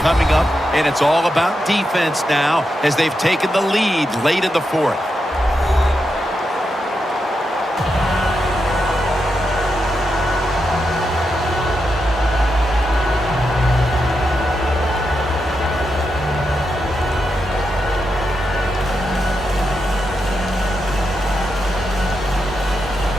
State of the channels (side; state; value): both; normal; correlation 0.86